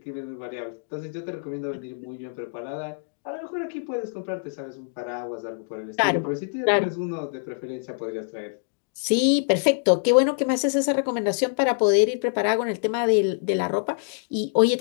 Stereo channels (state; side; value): silent; right; digital silence